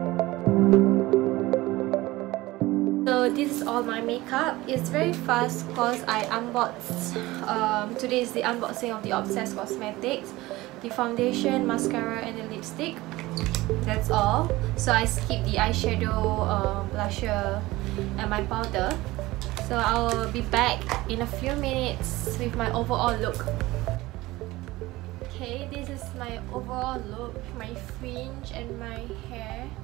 So this is all my makeup. It's very fast because I unboxed. Today is the unboxing of the Obsess Cosmetics, the foundation, mascara, and the lipstick. That's all. So I skipped the eyeshadow, blusher, and my powder. So I'll be back in a few minutes with my overall look. Okay, this is my overall look, my fringe and my hair.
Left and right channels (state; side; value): quieter; left; 19.0 dB